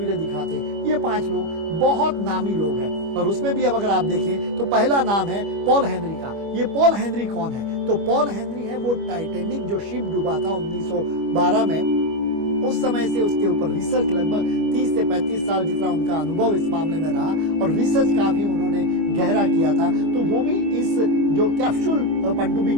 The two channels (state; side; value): late; left; 25 ms